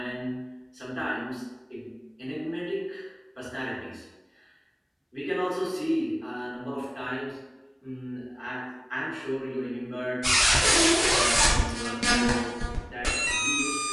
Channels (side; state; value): both; identical; correlation 1.00